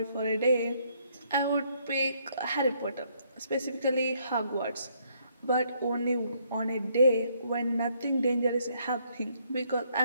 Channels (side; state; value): both; inverted; correlation -0.70